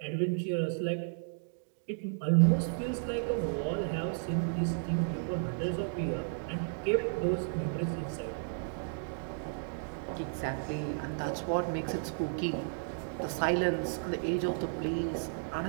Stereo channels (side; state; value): left; silent; digital silence